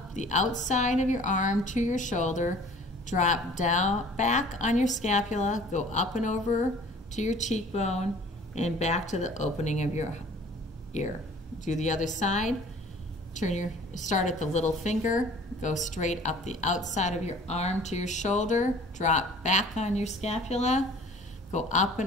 the outside of your arm to your shoulder. Drop down, back on your scapula. Go up and over to your cheekbone and back to the opening of your ear. Do the other side. Start at the little finger. Go straight up the outside of your arm to your shoulder. Drop back on your scapula. Go up and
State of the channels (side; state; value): both; normal; correlation 0.49